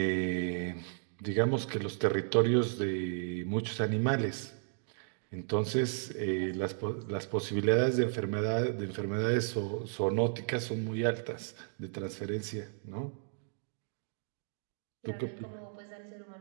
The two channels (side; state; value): left; silent; digital silence